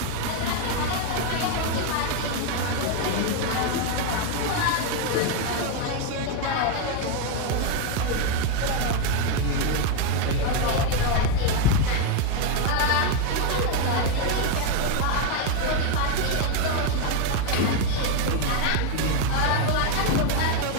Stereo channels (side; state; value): both; different; correlation 0.01